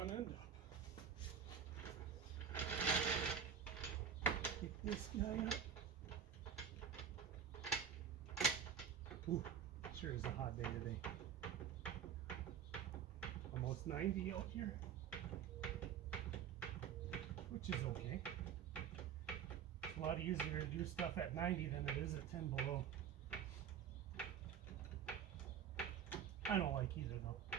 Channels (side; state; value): left; quieter; 7.9 dB